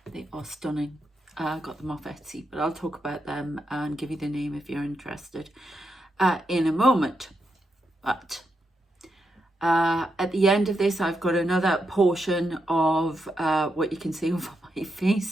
They are stunning. I got them off Etsy, but I'll talk about them and give you the name if you're interested in a moment. But at the end of this, I've got another portion of what you can see over my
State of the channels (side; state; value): both; normal; correlation 0.84